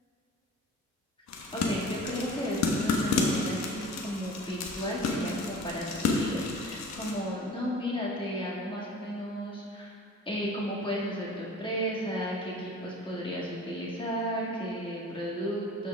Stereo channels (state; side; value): normal; both; correlation 0.42